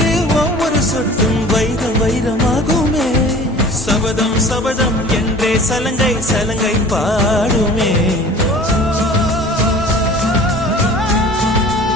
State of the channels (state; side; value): normal; both; correlation 0.44